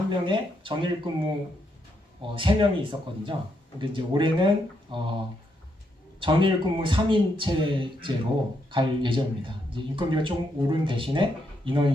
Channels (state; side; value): normal; both; correlation 0.78